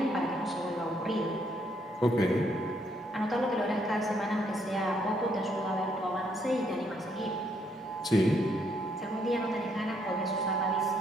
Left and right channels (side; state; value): both; normal; correlation 0.72